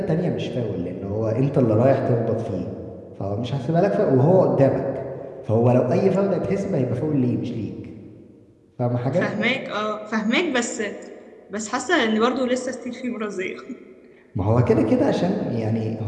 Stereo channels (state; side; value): identical; both; correlation 1.00